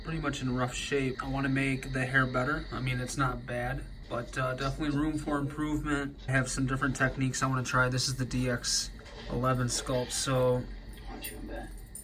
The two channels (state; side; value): identical; both; correlation 1.00